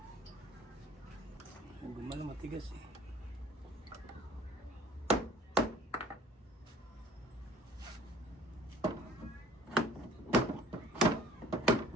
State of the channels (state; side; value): normal; both; correlation 0.51